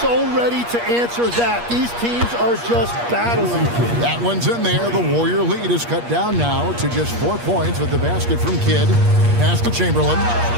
so ready to answer that. These teams are just battling. That one's in there. The Warrior lead is cut down now to just 4 points with the basket from Kidd. Pass to Chamberlain.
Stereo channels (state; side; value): late; left; 8.4 ms